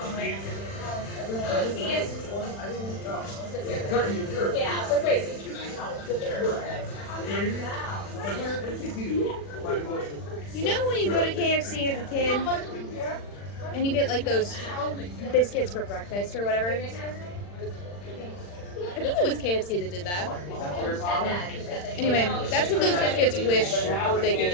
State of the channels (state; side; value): late; right; 40 ms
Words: You know when you go to KFC as a kid and you get like those biscuits for breakfast or whatever? I think it was KFC that did that. Anyway, that's what those biscuits wish they could